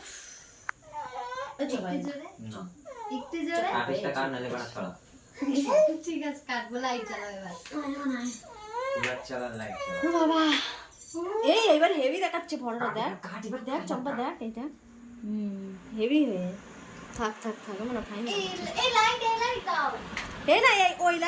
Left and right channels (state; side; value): identical; both; correlation 1.00